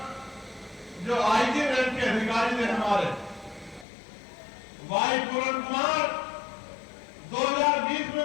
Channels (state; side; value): drops out; right; at 3.9 s